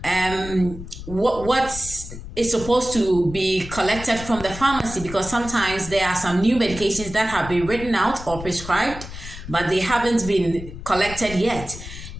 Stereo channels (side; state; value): left; noise; rumble, 11 dB below the sound